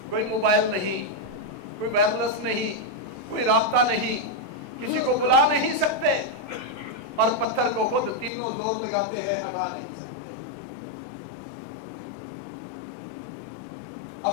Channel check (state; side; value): drops out; right; at 8.3 s